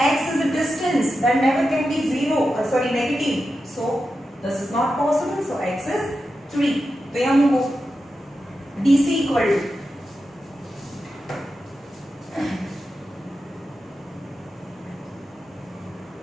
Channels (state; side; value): normal; both; correlation 0.90